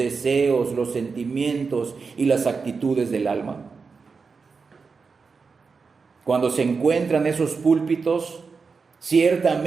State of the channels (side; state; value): left; quieter; 4.9 dB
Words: los sentimientos y las actitudes del alma. Cuando se encuentran esos púlpitos,